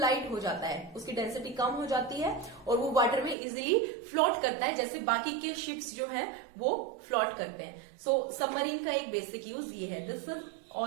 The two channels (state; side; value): drops out; left; at 3.4 s